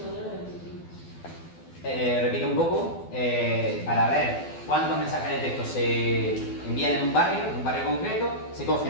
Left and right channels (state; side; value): late; right; 12 ms